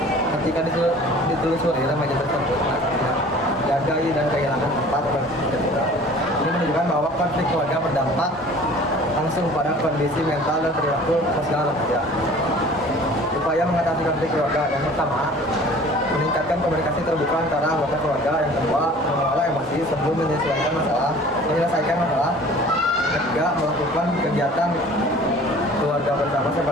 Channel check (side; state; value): both; normal; correlation 0.47